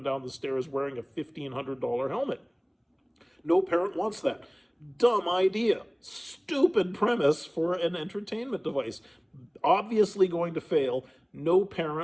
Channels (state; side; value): identical; both; correlation 1.00